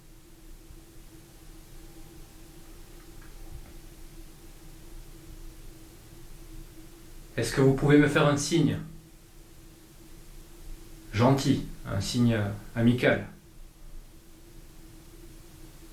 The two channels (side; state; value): both; identical; correlation 1.00